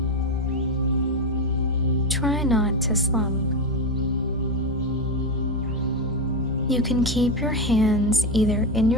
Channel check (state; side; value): normal; both; correlation 0.12